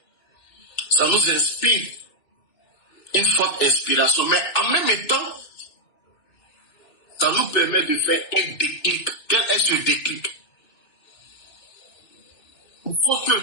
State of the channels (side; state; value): right; late; 2.6 ms